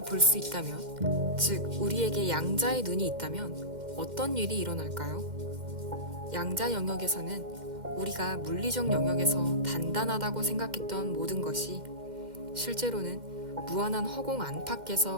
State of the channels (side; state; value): left; late; 2.1 ms